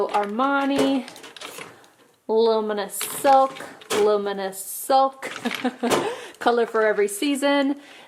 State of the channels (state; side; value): identical; both; correlation 1.00